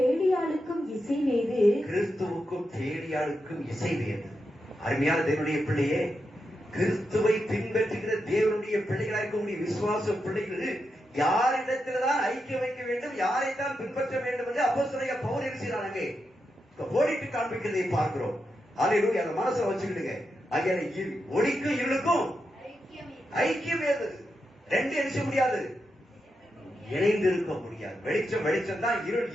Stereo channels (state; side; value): normal; both; correlation 0.86